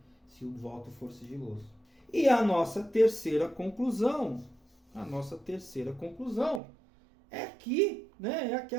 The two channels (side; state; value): left; drops out; at 6.6 s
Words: se o voto for sigiloso. E a nossa terceira conclusão é que, né, é